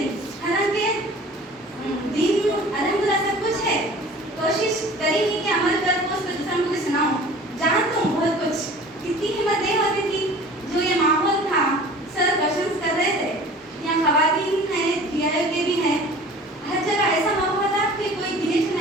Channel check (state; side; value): normal; both; correlation 0.44